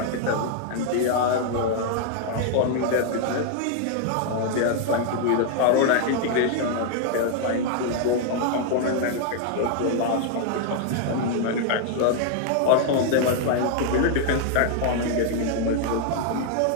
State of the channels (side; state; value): both; different; correlation 0.00